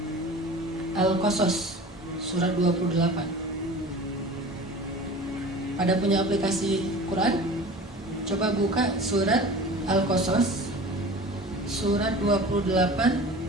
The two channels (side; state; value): both; normal; correlation 0.39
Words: Al-Qasas, surat 28. Pada punya aplikasi Quran? Coba buka surat Al-Qasas, surat 28